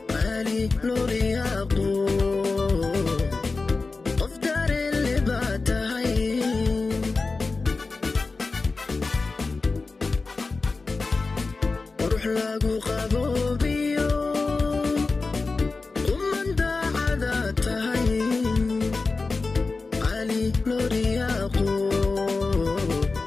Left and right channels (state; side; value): quieter; right; 3.9 dB